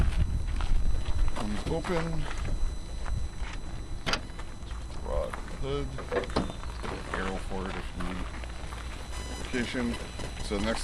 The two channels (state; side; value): identical; both; correlation 1.00